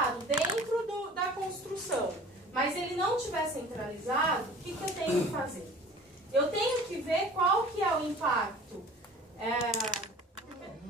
dentro da construção, mas ele não estiver centralizado, o que eu tenho que fazer? Eu tenho que ver qual que é o impacto.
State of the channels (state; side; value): normal; both; correlation 0.44